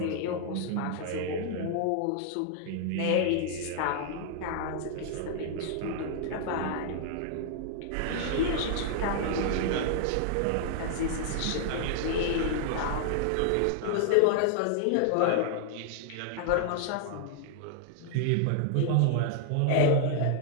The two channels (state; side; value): different; both; correlation -0.01